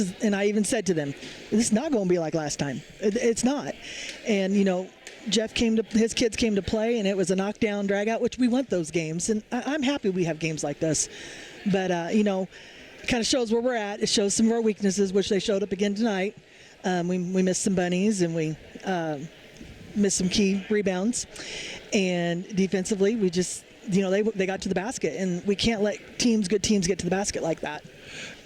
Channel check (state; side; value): identical; both; correlation 1.00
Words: and I even said to them, this is not going to be like last time. It's not. And, his kids came to play, and it was a knockdown, drag-out, which we want those games. And I'm happy we have games like this. But, it kind of shows where we're at. It shows some of our weaknesses, which they showed up again tonight. We missed some bunnies, and we missed some key rebounds. And defensively, we just, they got to the basket. And we can't let good teams get to the basket like that.